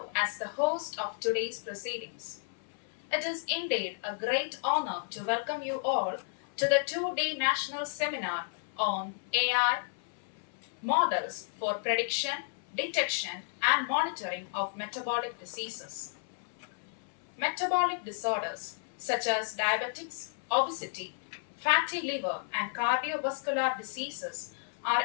as the host of today's proceedings. It is indeed a great honor to welcome you all to the 2-day national seminar on AI models for prediction, detection, and monitoring of metabolic diseases. Metabolic disorders such as diabetics, obesity, fatty liver, and cardiovascular diseases are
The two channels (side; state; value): right; silent; 56 dB below the other